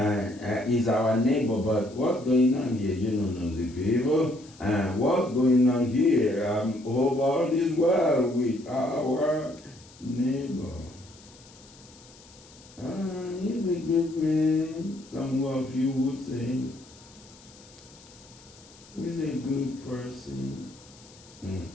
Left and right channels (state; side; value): noise; left; hiss, 23 dB below the sound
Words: he's our neighbor, but what's going on here? You don't know the people. And what's going on here? Hope all is well with our neighbor. He's a good man, some of you would say. He's a good person.